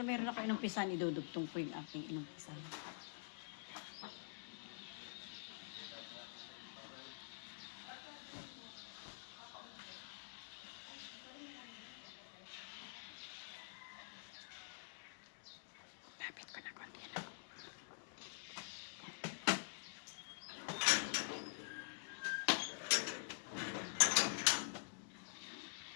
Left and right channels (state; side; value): silent; right; digital silence